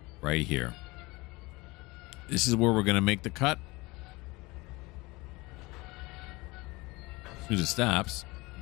Right here. This is where we're going to make the cut. As soon as it stops,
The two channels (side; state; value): right; quieter; 23.1 dB